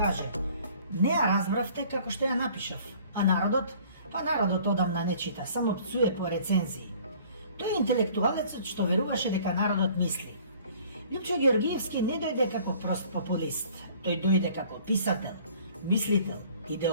не ја разбравте како што ја напишав, а народот одамна не чита, само пцуе по рецензии. Тој е интелектуалецот што веруваше дека народот мисли. Лјупчо Ѓоргиевски не дојде како прост популист, тој дојде како писател, мислител,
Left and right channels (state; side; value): inverted; both; correlation -0.53